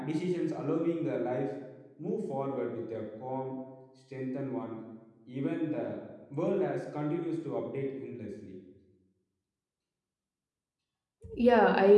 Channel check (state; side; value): identical; both; correlation 1.00